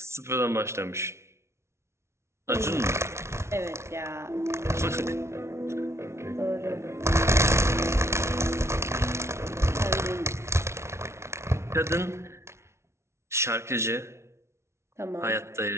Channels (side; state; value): left; late; 0.13 ms